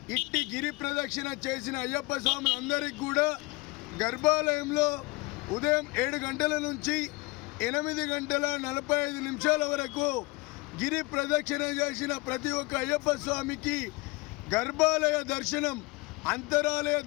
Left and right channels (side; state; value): right; quieter; 25.3 dB